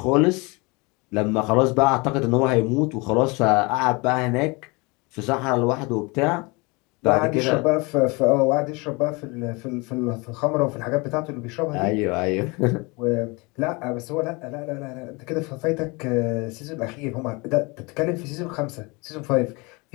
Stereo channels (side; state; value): right; quieter; 27.1 dB